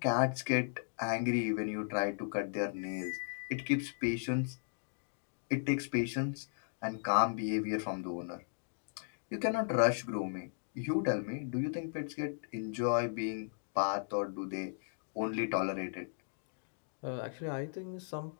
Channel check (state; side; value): silent; right; digital silence